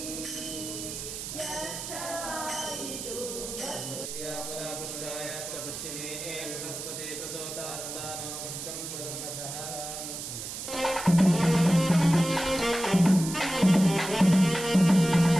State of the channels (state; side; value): noise; right; hiss, 7 dB below the sound